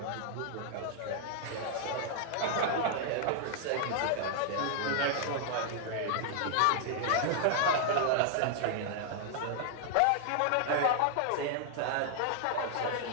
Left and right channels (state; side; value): different; both; correlation 0.00